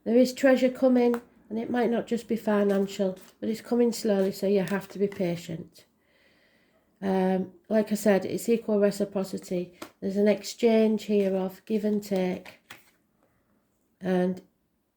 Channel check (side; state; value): both; identical; correlation 1.00